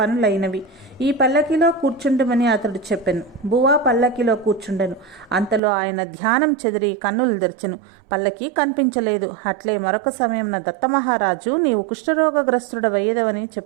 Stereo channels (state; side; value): drops out; left; at 5.6 s